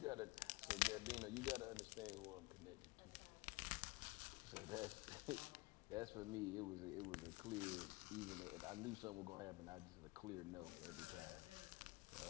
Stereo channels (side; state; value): right; quieter; 23.3 dB